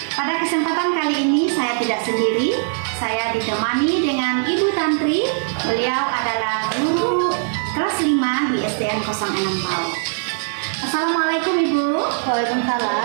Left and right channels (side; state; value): left; silent; 65 dB below the other